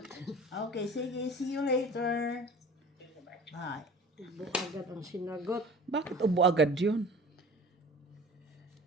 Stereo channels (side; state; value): both; normal; correlation 0.42